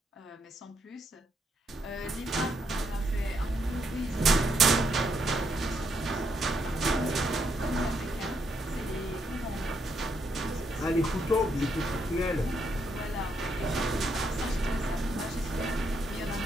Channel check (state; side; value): normal; both; correlation 0.76